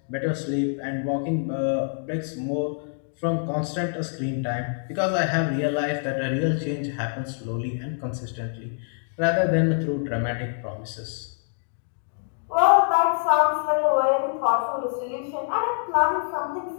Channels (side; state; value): right; silent; digital silence